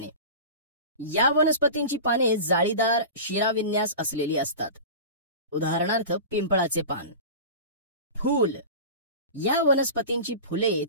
या वनस्पतींची पाने जाळीदार शिराविन्यास असलेली असतात. उदाहरणार्थ पिंपळाचे पान. फूल. या वनस्पतींची फुले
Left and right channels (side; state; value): both; inverted; correlation -0.32